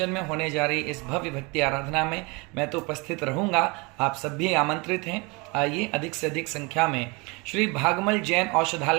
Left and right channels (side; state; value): left; quieter; 27.9 dB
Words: में होने जा रही इस भव्य भक्ति आराधना में मैं तो उपस्थित रहूंगा, आप सब भी आमंत्रित हैं। आइए अधिक से अधिक संख्या में श्री भागमल जैन